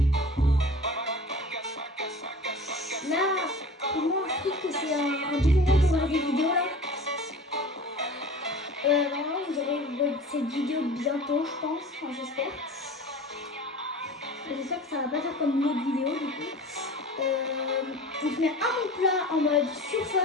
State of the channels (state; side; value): normal; both; correlation 0.39